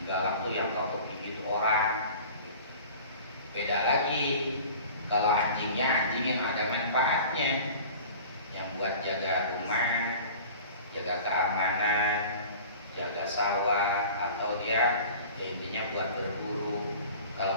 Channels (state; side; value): inverted; both; correlation -0.42